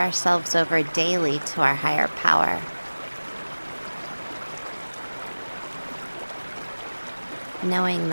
over daily to our higher power. Knowing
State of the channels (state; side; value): inverted; both; correlation -1.00